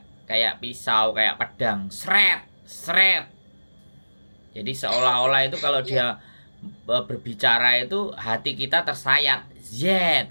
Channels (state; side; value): inverted; both; correlation -1.00